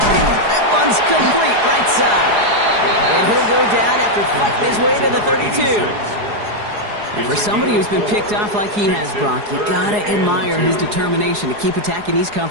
That one's complete right side. And he'll go down after fighting his way to the 32. And for somebody who's been picked off like he has, Brock, you gotta admire his determination to keep attacking these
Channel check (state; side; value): late; left; 4.8 ms